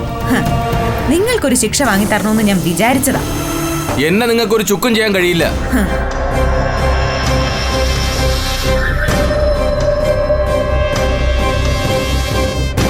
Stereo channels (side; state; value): both; identical; correlation 1.00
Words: ഹ, നിങ്ങൾക്കൊരു ശിക്ഷ വാങ്ങിത്തരണമെന്ന് ഞാൻ വിചാരിച്ചതാ. എന്നെ നിങ്ങൾക്കൊരു ചുക്കും ചെയ്യാൻ കഴിയില്ല.